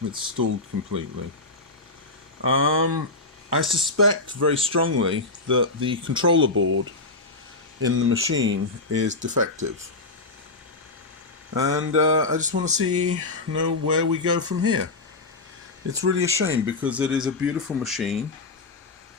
It's stalled completely. I suspect very strongly that the controller board in the machine is defective. And I just want to know where we go from here. It's really a shame, because it is a beautiful machine,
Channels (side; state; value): right; quieter; 3.3 dB